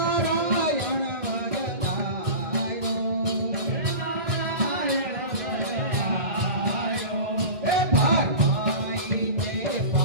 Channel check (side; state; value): left; late; 1.7 ms